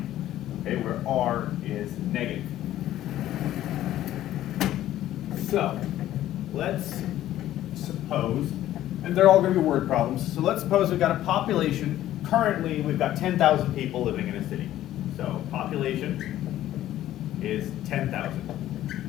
okay, where R is negative. So, let's suppose, and they're all going to be word problems, so let's suppose we've got a population, currently we've got 10,000 people living in a city. So population is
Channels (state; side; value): quieter; right; 13.3 dB